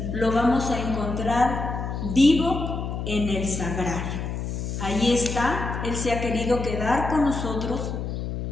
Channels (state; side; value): noise; left; hum, 4 dB below the sound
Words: Lo vamos a encontrar vivo en el sagrario. Ahí está, Él se ha querido quedar con nosotros